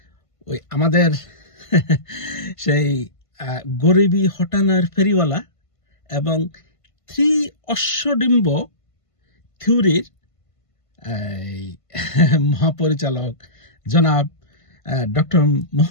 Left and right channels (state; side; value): late; right; 1.5 ms